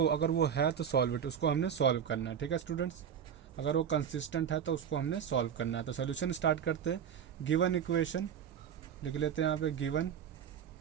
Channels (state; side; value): quieter; left; 8.3 dB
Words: अगर वो है तो सॉल्व इट, उसको हमने सॉल्व करना है, ठीक है स्टूडेंट्स। अगर वो कंसिस्टेंट है तो उसको हमने सॉल्व करना है। तो सोल्यूशन स्टार्ट करते हैं। गिवन इक्वेशन लिख लेते हैं यहाँ पे, गिवन